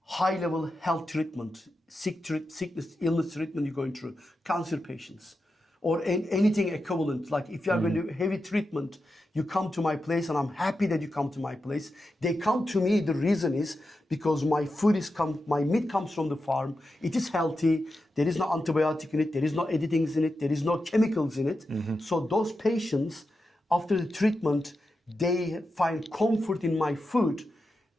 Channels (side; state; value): both; normal; correlation 0.89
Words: high-level health treatment, sickness, illness treatment you're going through, cancer patients, or anything equivalent. Like if you are going to do heavy treatment, you come to my place, and I'm happy that you come to my place. They come to me, the reason is because my meat comes from the farm. It is healthy. There is no antibiotic in it. There is no editings in it. There is no chemicals in it. So those patients, after the treatment, they find comfort in my food